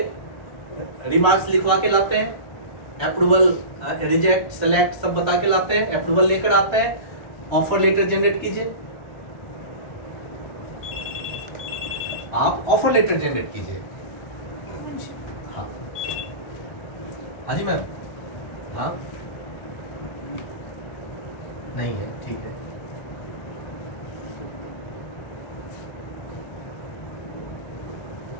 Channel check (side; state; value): right; late; 1.3 ms